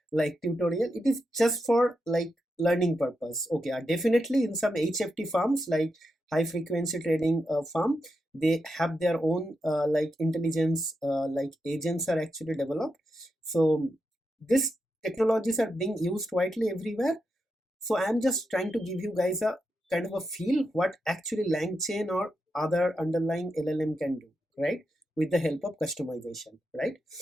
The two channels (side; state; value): both; normal; correlation 0.86